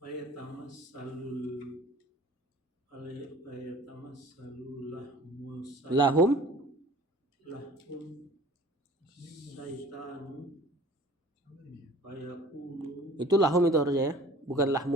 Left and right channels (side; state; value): both; normal; correlation 0.47